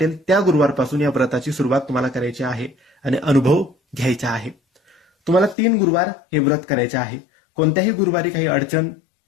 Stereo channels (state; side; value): drops out; right; at 5.6 s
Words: त्या गुरुवारपासून या व्रताची सुरुवात तुम्हाला करायची आहे आणि अनुभव घ्यायचा आहे. तुम्हाला 3 गुरुवार हे व्रत करायचे आहे. कोणत्याही गुरुवारी काही अडचण,